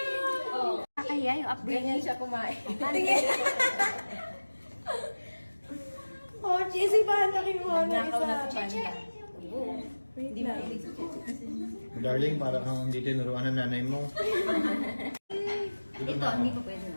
Oh. Kaya yung upgrade niya siya kumain. Pochi, isipahan na kayo mo na Nakaw na isa. sa panda. Hindi mahilig sa cheche kasi. Darling, para kang hindi tinuruan ng nanay mo. Ito, hindi pa pwede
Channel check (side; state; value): both; inverted; correlation -1.00